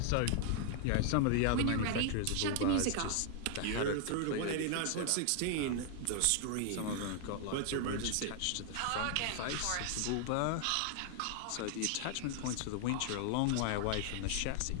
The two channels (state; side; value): different; both; correlation 0.00